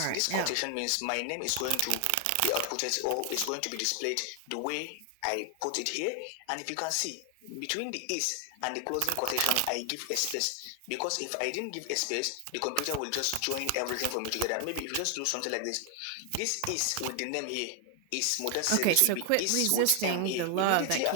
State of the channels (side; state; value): both; different; correlation 0.00